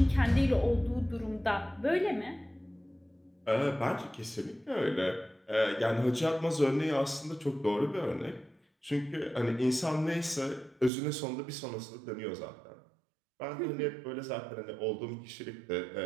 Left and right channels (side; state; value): left; drops out; at 10.9 s